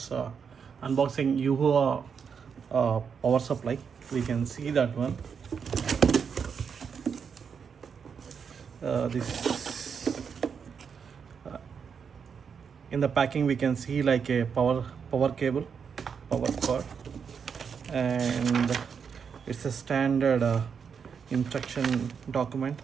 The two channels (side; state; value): left; quieter; 6.5 dB